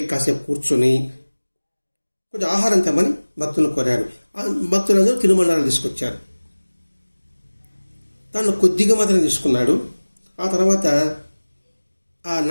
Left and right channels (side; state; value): both; inverted; correlation -1.00